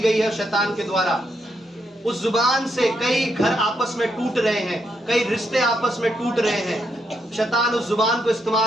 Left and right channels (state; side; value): normal; both; correlation 0.79